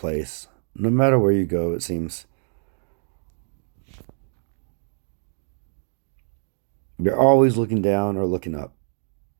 No matter where you go, it seems. You're always looking down or looking up.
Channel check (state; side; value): silent; left; digital silence